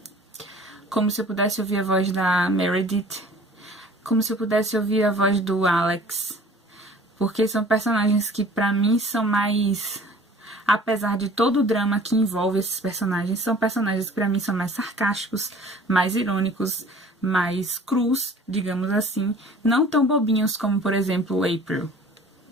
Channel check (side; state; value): both; normal; correlation 0.48